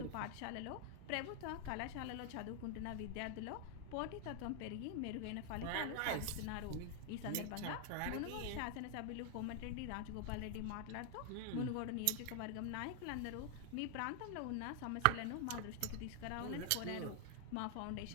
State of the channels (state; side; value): different; both; correlation 0.00